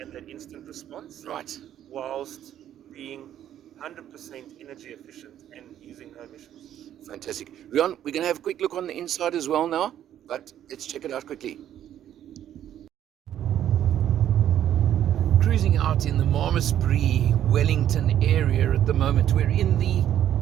that instant response, Right. whilst being 100% energy efficient and using no emissions. Fantastic. Rian, we're going to have a quick look on the inside as well now, but let's check it out quickly. Cruising out in the Malmesbury, Wellington area at the moment. We're in the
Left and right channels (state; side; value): quieter; left; 11.0 dB